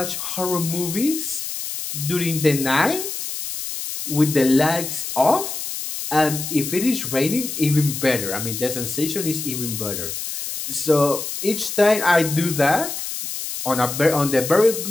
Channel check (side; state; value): left; noise; hiss, 6 dB below the sound